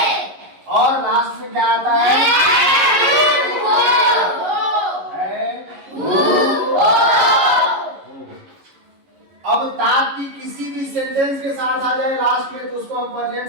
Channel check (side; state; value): left; late; 11 ms